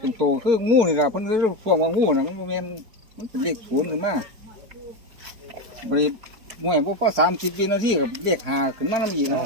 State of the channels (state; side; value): late; left; 4.5 ms